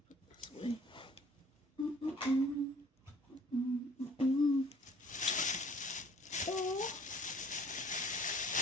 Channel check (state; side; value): normal; both; correlation 0.54